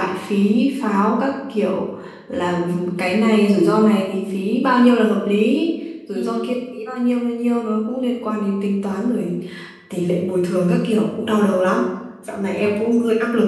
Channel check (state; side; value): identical; both; correlation 1.00